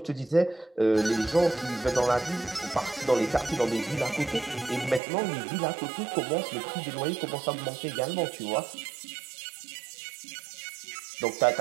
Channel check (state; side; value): drops out; left; at 5.0 s